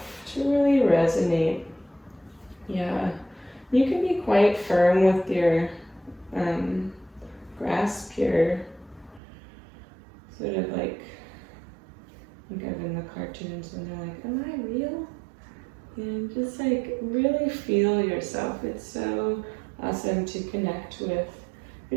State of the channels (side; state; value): left; drops out; at 9.2 s